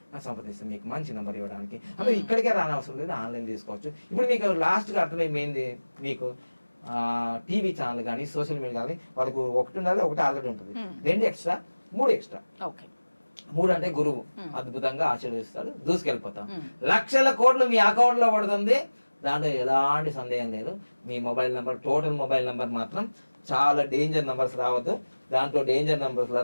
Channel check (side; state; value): both; inverted; correlation -1.00